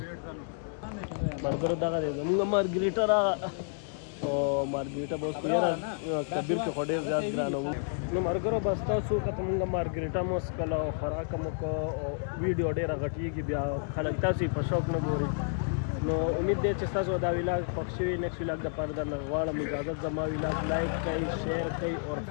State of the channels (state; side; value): silent; right; digital silence